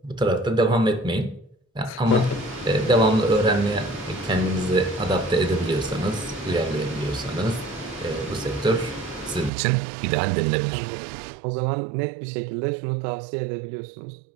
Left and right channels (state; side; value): drops out; left; at 9.5 s